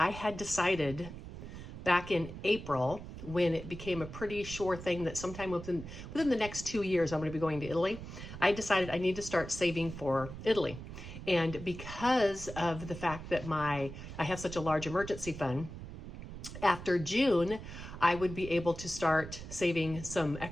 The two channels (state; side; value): noise; right; rumble, 11 dB below the sound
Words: had decided back in April, when it became a pretty sure thing that sometime within the next 2 years I'm going to be going to Italy, I decided I need to start saving for Italy. And because of the fact that I have such a large emergency fund, after June, I would be able to start saving some